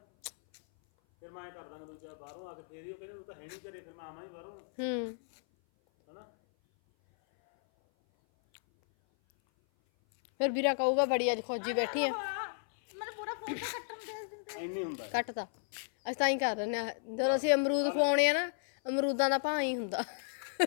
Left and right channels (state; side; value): silent; right; 55 dB below the other